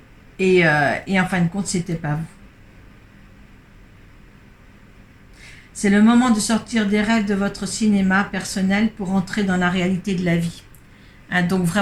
et en fin de compte, c'était pas vous. C'est le moment de sortir des rêves de votre cinéma personnel pour entrer dans la réalité de la vie. Hein, donc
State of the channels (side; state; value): both; identical; correlation 1.00